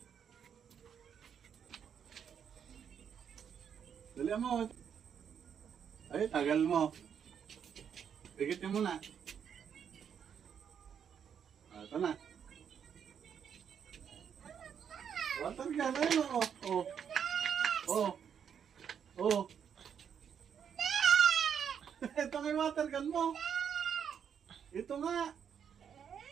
Dali mo. Ay, tagal mo. Pigitin mo na. Ito na. Water gun, ayun o. Oh. Oh. Oh. Ito nga yung water gun mo. Ito nga.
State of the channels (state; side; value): quieter; left; 7.9 dB